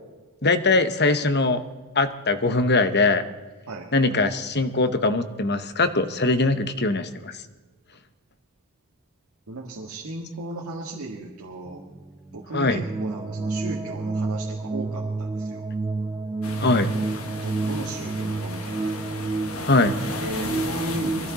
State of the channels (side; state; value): both; normal; correlation 0.24